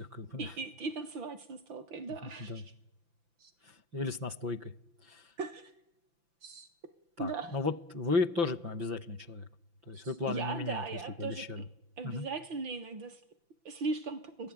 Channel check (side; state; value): left; late; 5.9 ms